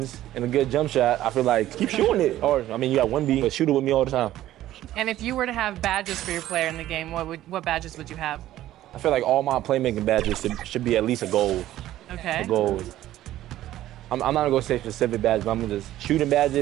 and a good jump shot, I feel like keep shooting it. Or, I mean, you got 1B, but shoot it with me all the time. And if you were to have badges for your player in the game, what badges would you have? I feel like all my playmaking badges should be at least a gold. Okay. A gold. I'm not gonna go say specific badges, but I'm gonna just shooting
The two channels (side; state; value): left; quieter; 13.9 dB